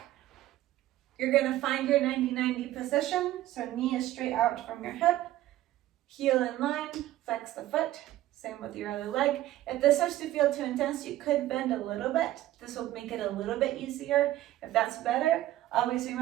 You're going to find your 90-90 position. So knee is straight out from your hip, heel in line, flex the foot. Same with your other leg. If this starts to feel too intense, you could bend a little bit. This will make it a little bit easier. If that's better, always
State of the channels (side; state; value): left; quieter; 14.7 dB